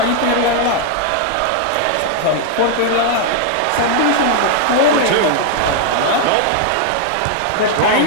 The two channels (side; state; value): both; different; correlation 0.00